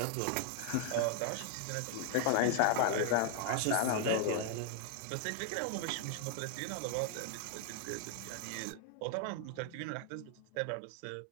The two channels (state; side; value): different; both; correlation 0.00